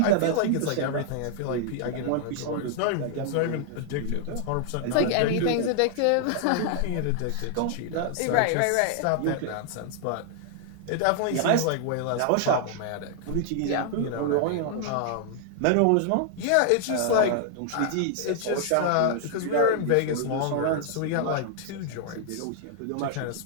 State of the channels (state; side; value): different; both; correlation 0.00